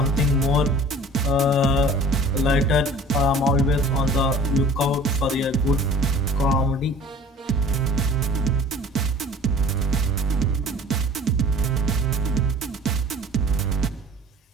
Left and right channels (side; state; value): both; normal; correlation 0.46